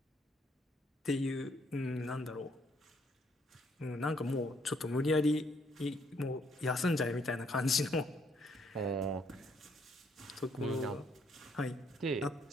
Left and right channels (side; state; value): both; normal; correlation 0.69